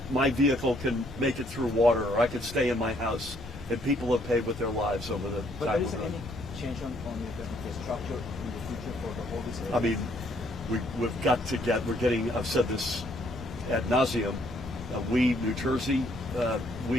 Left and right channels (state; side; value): normal; both; correlation 0.67